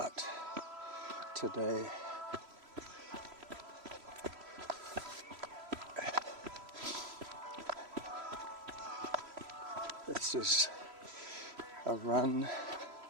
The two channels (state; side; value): late; left; 3.0 ms